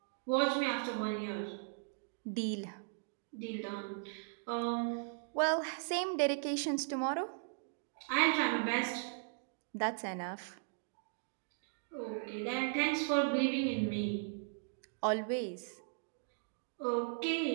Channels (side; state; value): left; silent; digital silence